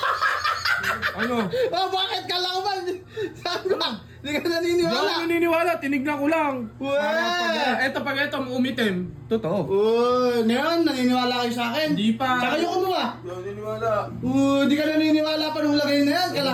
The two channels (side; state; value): both; identical; correlation 1.00